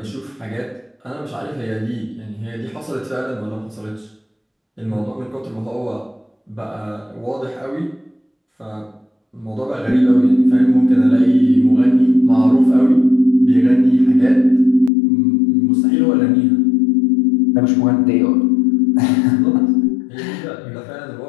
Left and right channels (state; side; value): drops out; right; at 14.9 s